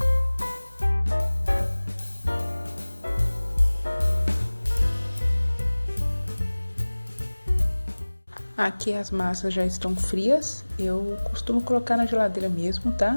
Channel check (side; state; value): both; inverted; correlation -1.00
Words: Aqui as massas já estão frias, eu costumo colocar na geladeira mesmo,